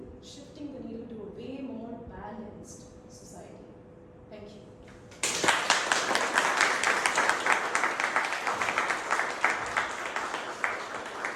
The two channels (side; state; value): both; identical; correlation 1.00